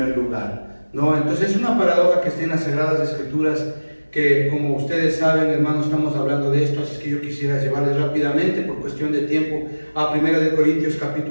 lugar, ¿no? Entonces es una paradoja que está en las Sagradas Escrituras, que, como ustedes saben, hermanos, estamos hablando de esto, así que yo quisiera llevarles rápidamente, por cuestión de tiempo, a 1 Corintios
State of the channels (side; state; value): both; inverted; correlation -1.00